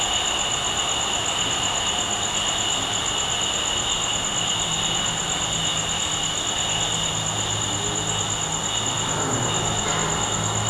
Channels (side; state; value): both; identical; correlation 1.00